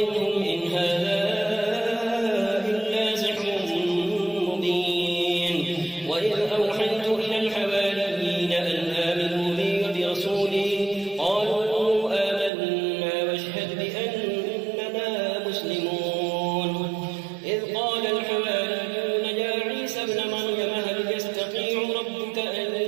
إن هذا إلا سحر مبين وإذ أوحيت إلى الحواريين أن آمنوا بي وبرسولي قالوا آمنا واشهد بأننا مسلمون إذ قال الحواريون يا عيسى ابن مريم هل يستطيع ربك أن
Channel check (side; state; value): left; drops out; at 12.5 s